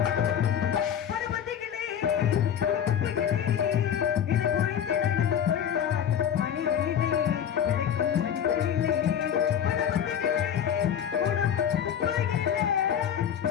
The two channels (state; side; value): quieter; right; 9.0 dB